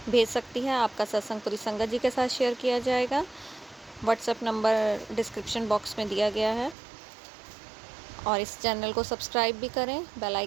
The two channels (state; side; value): drops out; left; at 6.8 s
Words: भेज सकती है। आपका सत्संग पूरी संगत जी के साथ शेयर किया जाएगा। व्हाट्सएप नंबर डिस्क्रिप्शन बॉक्स में दिया गया है। और इस चैनल को सब्सक्राइब भी करें, बेल